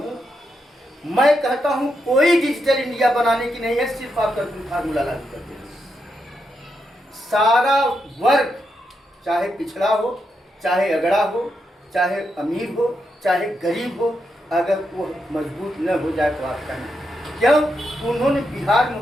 मैं कहता हूं कोई डिजिटल इंडिया बनाने की नहीं है, सिर्फ आप कर्पूरी फार्मूला लागू करते हैं। सारा वर्ग, चाहे पिछड़ा हो, चाहे अगड़ा हो, चाहे अमीर हो, चाहे गरीब हो, अगर वो मजबूत न हो जाए तो आपका नहीं। क्यों? उन्होंने बिहार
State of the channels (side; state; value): both; normal; correlation 0.83